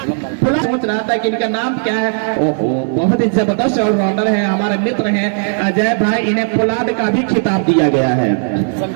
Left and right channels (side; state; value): left; silent; digital silence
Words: सोच रहा था कि इनका नाम क्या है। ओहो, बहुत ही जबरदस्त ऑलराउंडर है, हमारे मित्र हैं अजय भाई। इन्हें पोलार्ड का भी खिताब दिया गया है